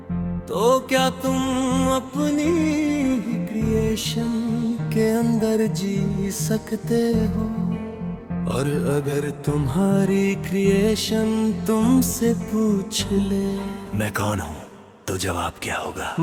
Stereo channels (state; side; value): identical; both; correlation 1.00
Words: तो क्या तुम अपनी ही क्रिएशन के अंदर जी सकते हो? और अगर तुम्हारी क्रिएशन तुमसे पूछ ले मैं कौन हूँ, तो जवाब क्या होगा?